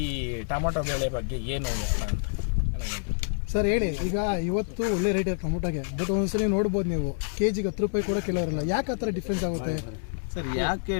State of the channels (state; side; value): silent; right; 59 dB below the other